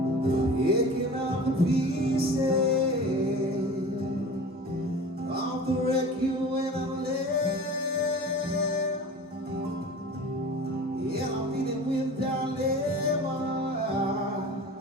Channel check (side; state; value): both; normal; correlation 0.38